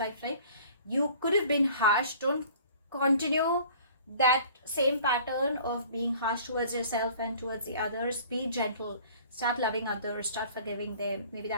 you could have been harsh. Don't continue that same pattern of being harsh towards yourself and towards the others. Be gentle, start loving others, start forgiving them. Maybe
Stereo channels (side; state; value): both; inverted; correlation -0.50